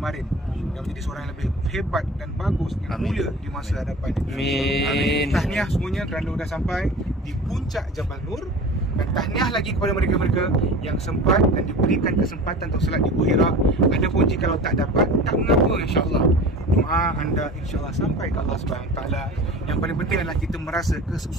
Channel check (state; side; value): normal; both; correlation 0.37